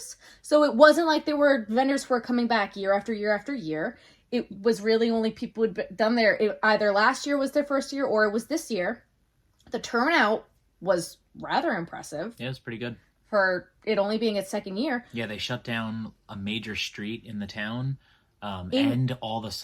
So it wasn't like there were vendors who were coming back year after year after year. It was really only people who'd done there. Either last year was their first year or it was this year. The turnout was rather impressive. Yeah, it's pretty good. For it only being its second year. Yeah, they shut down a major street in the town, and all the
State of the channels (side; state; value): both; identical; correlation 1.00